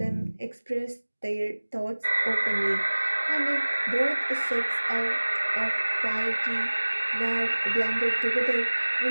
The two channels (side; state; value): both; inverted; correlation -1.00